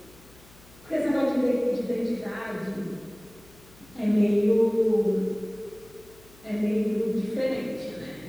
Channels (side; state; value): left; noise; hum, 25 dB below the sound